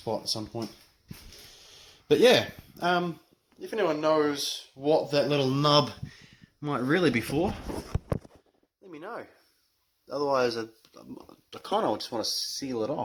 at some point. But yeah, if anyone knows what that little nub might really be for, let me know. Otherwise, I kind of just want to seal it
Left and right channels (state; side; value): identical; both; correlation 1.00